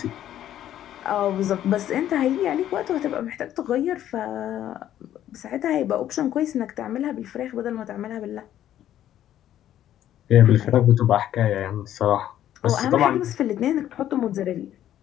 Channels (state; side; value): quieter; right; 11.7 dB